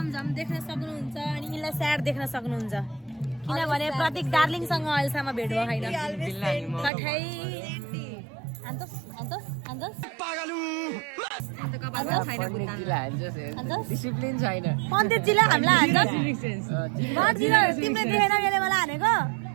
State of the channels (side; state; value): left; drops out; at 6.9 s